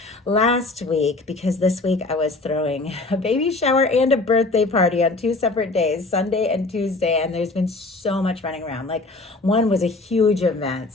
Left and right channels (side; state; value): right; quieter; 3.3 dB